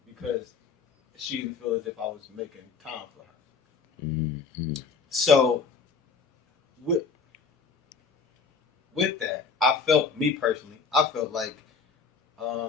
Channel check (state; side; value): quieter; right; 5.2 dB